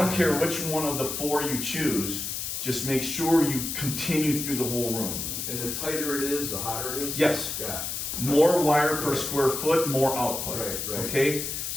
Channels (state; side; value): noise; left; hiss, 4 dB below the sound